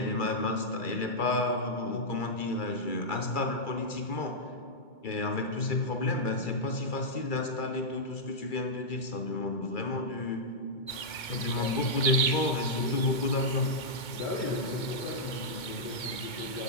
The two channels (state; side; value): late; right; 2.2 ms